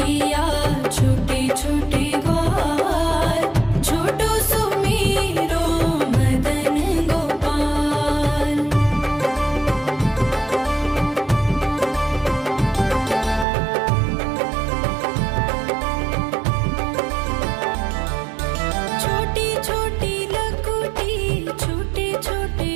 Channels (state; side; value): drops out; left; at 13.5 s